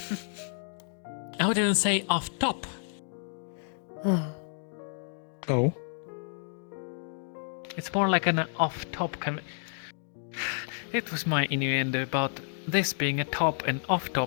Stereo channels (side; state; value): right; silent; digital silence